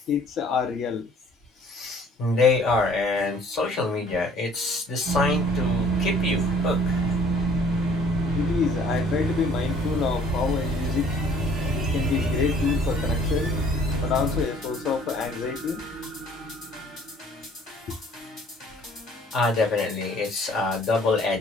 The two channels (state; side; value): normal; both; correlation 0.56